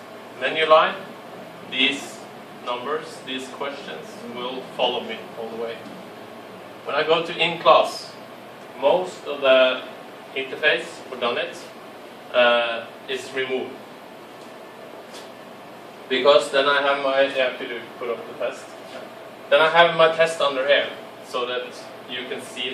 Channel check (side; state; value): both; identical; correlation 1.00